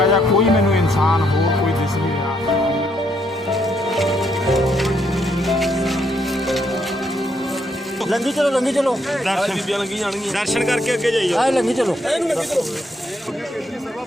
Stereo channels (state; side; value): normal; both; correlation 0.74